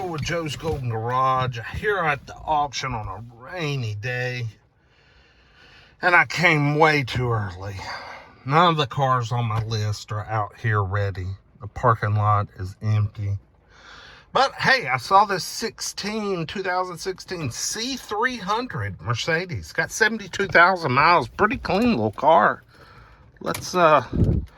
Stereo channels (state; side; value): identical; both; correlation 1.00